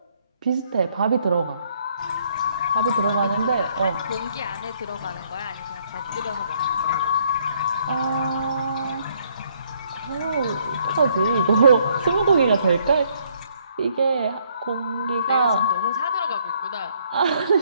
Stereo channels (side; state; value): both; inverted; correlation -0.67